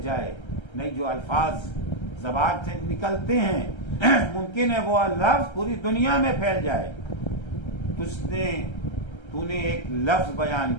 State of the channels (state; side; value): late; right; 1.3 ms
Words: جائے، نہیں جو الفاظ زبان سے نکلتے ہیں ممکن ہے وہ لفظ پوری دنیا میں پھیل جائے۔ تو نے ایک لفظ بیان